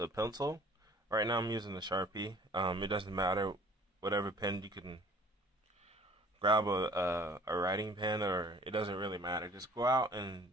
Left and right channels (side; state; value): both; normal; correlation 0.51